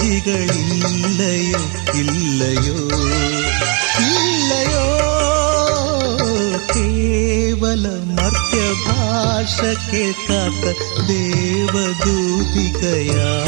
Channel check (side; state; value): left; quieter; 35.1 dB